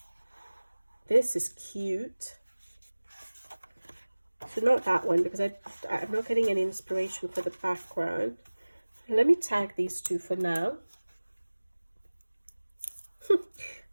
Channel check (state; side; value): inverted; both; correlation -1.00